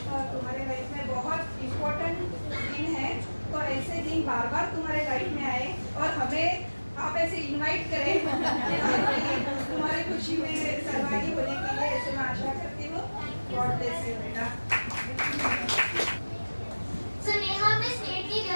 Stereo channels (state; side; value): inverted; both; correlation -1.00